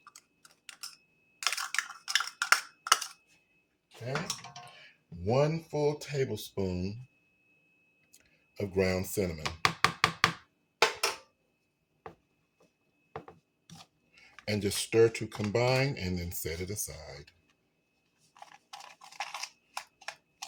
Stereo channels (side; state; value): both; identical; correlation 1.00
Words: Okay, 1 full tablespoon of ground cinnamon. And just stir to combine and then set it aside.